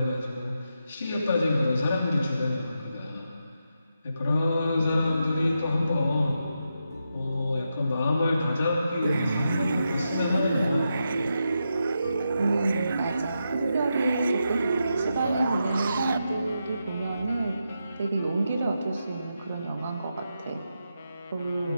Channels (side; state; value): both; inverted; correlation -0.86